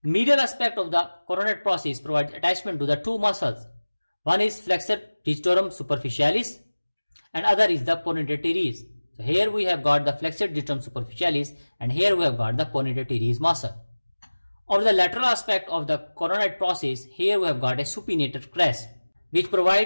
Medial aspect of the coronate process provides attachment to the two muscles. One is flexor digitorum superficialis and other is the pronator teres. So here we have got the flexor digitorum superficialis and here we have got the pronator teres muscle. Over the lateral aspect of the coronate process, here we have got a supinator crest which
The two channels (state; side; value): inverted; both; correlation -1.00